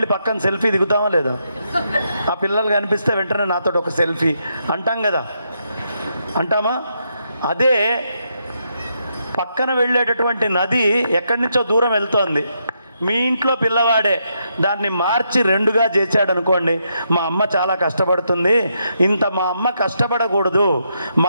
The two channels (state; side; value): inverted; both; correlation -0.79